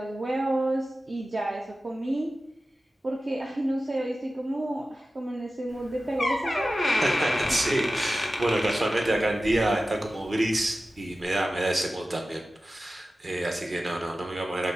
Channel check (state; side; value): normal; both; correlation 0.94